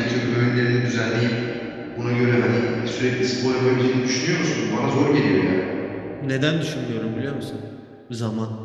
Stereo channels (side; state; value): both; identical; correlation 1.00